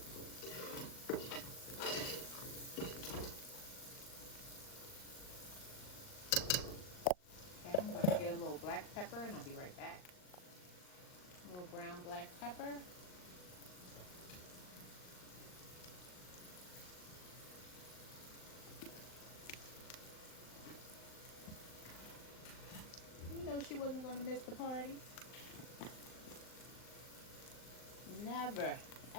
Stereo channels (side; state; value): right; late; 39 ms